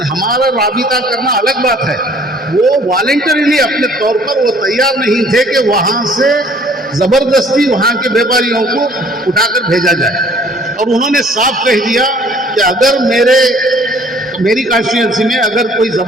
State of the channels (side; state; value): both; normal; correlation 0.56